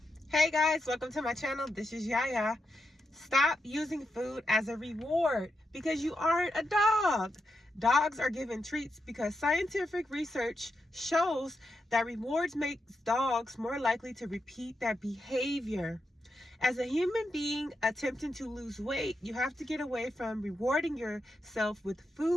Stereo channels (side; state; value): both; normal; correlation 0.86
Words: Hey guys, welcome to my channel. This is Yaya. Stop using food as a reward because you aren't a dog. Dogs are given treats because scientific research shows that rewards makes dogs more likely to repeat that behavior. As a human being attempting to lose weight, you have to get away from rewarding yourself with